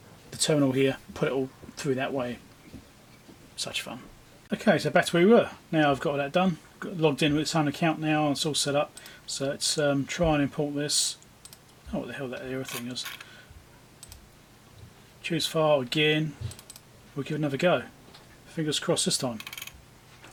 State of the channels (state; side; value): identical; both; correlation 1.00